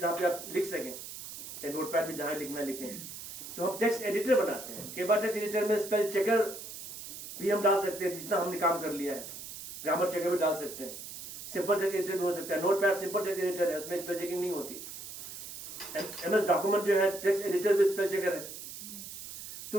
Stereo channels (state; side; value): noise; right; hiss, 11 dB below the sound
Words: जहां पे आप लिख सकें, या नोटपैड में जहां लिखना लिखें। तो हम टेक्स्ट एडिटर बनाते हैं। कई बार टेक्स्ट एडिटर में स्पेल चेकर भी हम डाल सकते हैं, जितना हमने काम कर लिया है। ग्रामर चेकर भी डाल सकते हैं। सिंपल टेक्स्ट एडिटर भी हो सकता है। नोटपैड सिंपल टेक्स्ट एडिटर है, उसमें स्पेल चेकिंग नहीं होती। MS डॉक्यूमेंट जो है टेक्स्ट एडिटर भी स्पेल चेकर है।